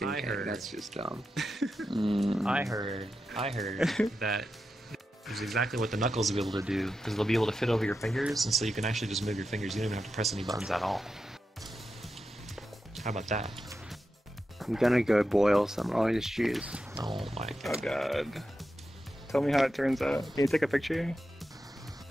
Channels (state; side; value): normal; both; correlation 0.89